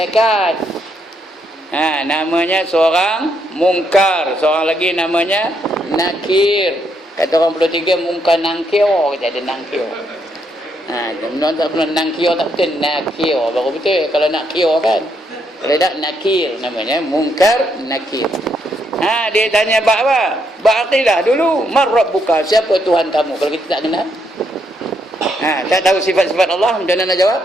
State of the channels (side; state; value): both; normal; correlation 0.76